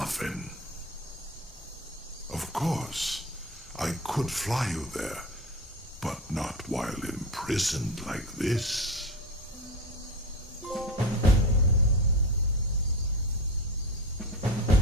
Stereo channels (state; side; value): normal; both; correlation 0.26